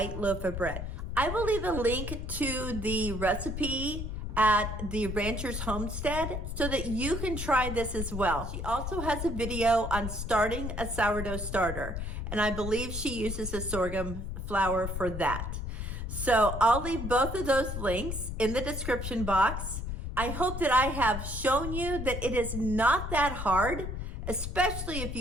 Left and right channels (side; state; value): left; noise; rumble, 5 dB below the sound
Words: loaf of bread. I will leave a link to the recipe at the Ranchers Homestead so that you can try this as well. She also has a video on starting a sourdough starter, and I believe she uses a sorghum flour for that. So I'll leave both of those links in the description box. I hope that I have shown you that it is not that hard, especially if